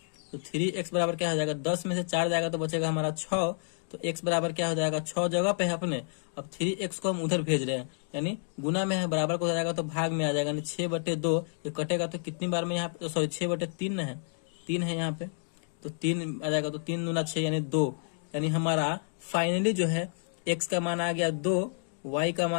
तो 3x बराबर क्या हो जाएगा, 10 में से 4 जाएगा तो बचेगा हमारा 6। तो x बराबर क्या हो जाएगा, 6 जगह पे है अपने। अब 3x को हम उधर भेज रहे हैं, यानी गुना में है, बराबर को हो जाएगा तो भाग में आ जाएगा, यानी 6/2। ये कटेगा तो कितनी बार में यहाँ पे, सॉरी 6/3 है, 3 है यहाँ पे, तो 3 आ जाएगा। तो 3 दूना 6 यानी 2, यानी हमारा फाइनली जो है x का मान आ गया 2, y का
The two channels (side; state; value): right; silent; digital silence